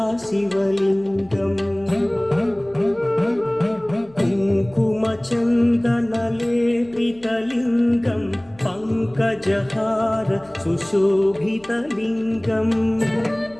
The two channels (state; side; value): noise; left; hum, 27 dB below the sound